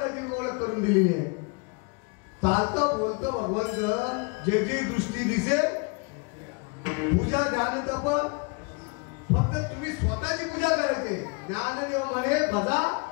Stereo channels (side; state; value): right; quieter; 31.6 dB